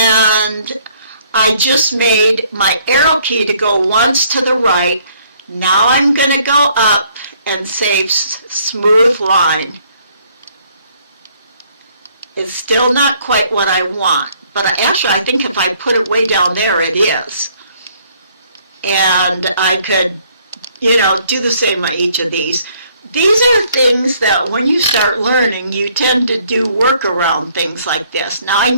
I just made my arrow key to go once to the right. Now I'm going to go up and say smooth line. It's still not quite what I want, but actually I think if I put it way down there it is. And I could, do the same on each of these. These are things that when you start learning, you tend to do work around things like this. Now I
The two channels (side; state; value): both; inverted; correlation -0.64